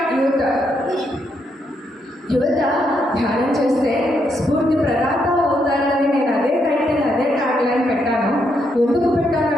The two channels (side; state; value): both; normal; correlation 0.78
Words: యువత ధ్యానం చేస్తే స్ఫూర్తి ప్రదాత అవుతారని నేను అదే టైటిల్ అదే ట్యాగ్లైన్ పెట్టాను. ఎందుకు